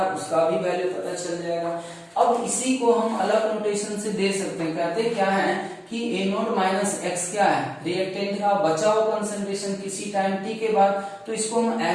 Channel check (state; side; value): identical; both; correlation 1.00